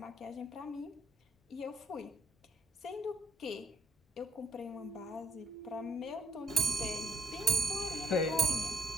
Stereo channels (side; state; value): both; normal; correlation 0.64